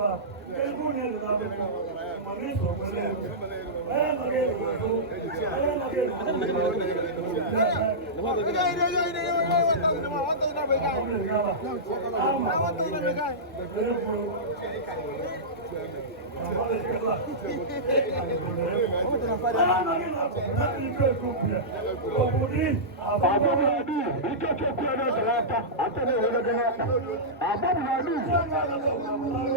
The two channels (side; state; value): both; normal; correlation -0.15